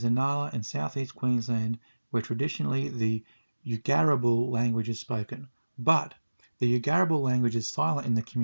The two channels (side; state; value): both; inverted; correlation -1.00